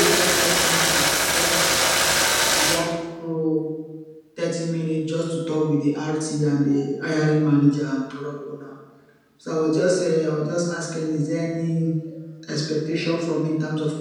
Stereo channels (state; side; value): identical; both; correlation 1.00